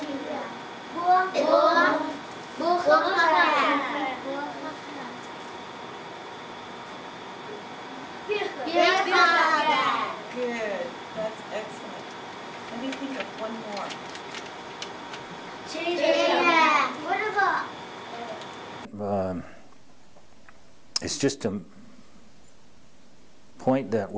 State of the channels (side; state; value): both; identical; correlation 1.00